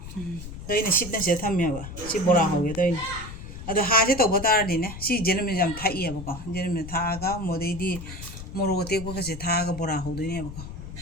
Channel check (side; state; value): left; noise; rumble, 11 dB below the sound